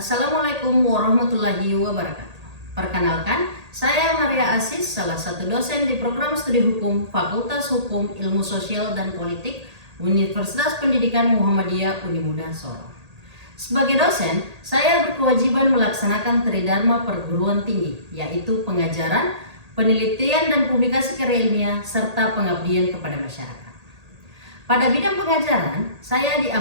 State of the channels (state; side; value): late; left; 1.8 ms